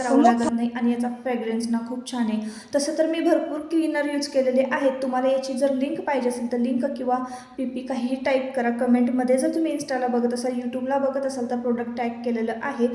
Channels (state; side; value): identical; both; correlation 1.00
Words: लागत नाही आणि याचा फ्रेग्रन्स ना खूप छान आहे. तसं तर मी भरपूर क्लीनर यूज केलेले आहेत. तुम्हाला याची जर लिंक पाहिजे असेल तर लिंक किंवा पी काहीही टाईप करा कमेंटमध्ये. जर तुम्ही इन्स्टाला बघत असाल, यूट्यूबला बघत असाल तर प्रोडक्ट टॅग केलेलं आहे.